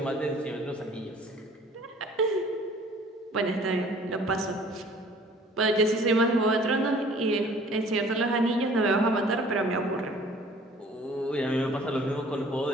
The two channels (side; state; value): both; normal; correlation 0.52